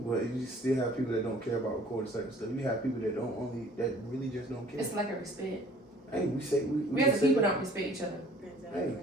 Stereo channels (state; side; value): normal; both; correlation 0.53